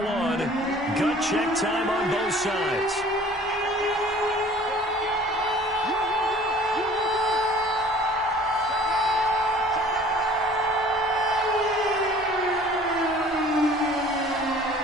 Gut check time on both sides.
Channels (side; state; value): both; normal; correlation 0.50